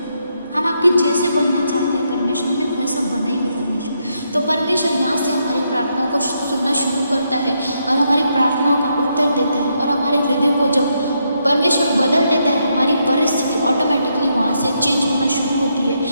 हम आपके जैसे बनना चाहते हैं परमेश्वर, हमें वैसा बनाइए परमेश्वर। तो परमेश्वर यहाँ से हमारी प्रार्थनाओं को सुनना शुरू करता है और हमारी प्रार्थनाओं का उत्तर देता है। और हमारे हृदय को जब परमेश्वर बदल देता है, हमारी परिस्थिति ऑटोमेटिकली वहाँ से चेंज होना शुरू होती है।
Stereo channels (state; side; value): inverted; both; correlation -0.79